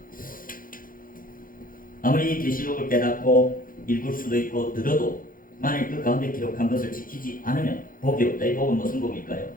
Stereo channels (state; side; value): late; right; 0.40 ms